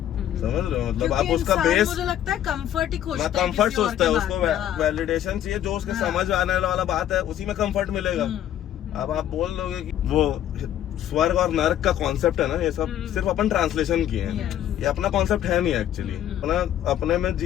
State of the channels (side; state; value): right; quieter; 11.3 dB